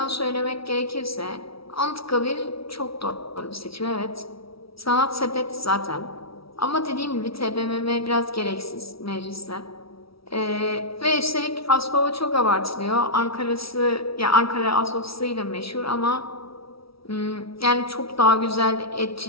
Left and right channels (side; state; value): right; late; 0.75 ms